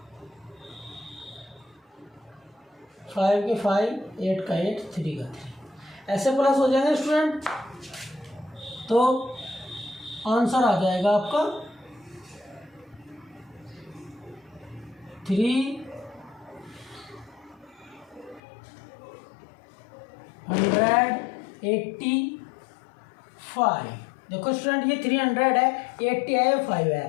फाइव के 5, 8 का 8, 3 का 3, ऐसे प्लस हो जाएंगे स्टूडेंट। तो आंसर आ जाएगा आपका 385। देखो स्टूडेंट ये 300 है, 80 है, 5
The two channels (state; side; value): drops out; right; at 18.4 s